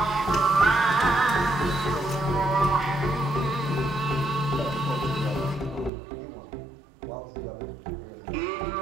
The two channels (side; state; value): left; drops out; at 5.9 s